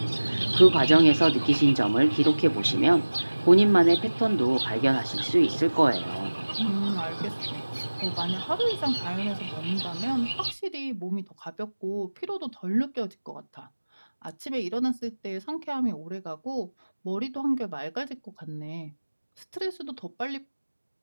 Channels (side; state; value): both; inverted; correlation -1.00